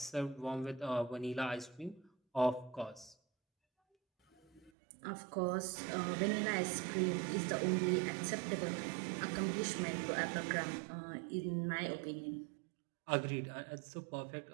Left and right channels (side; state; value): left; drops out; at 4.7 s